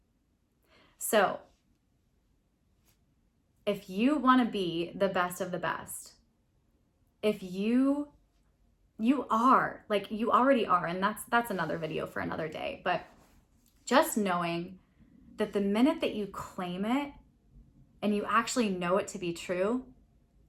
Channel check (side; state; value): both; identical; correlation 1.00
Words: So if you want to be the best of the best, if you are, like you already are, and that's another video for another day, but just knowing that the minute that you claim it and you actually know it to be true,